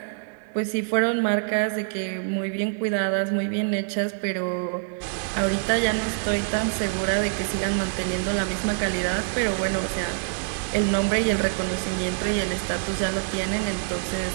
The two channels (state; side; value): silent; left; digital silence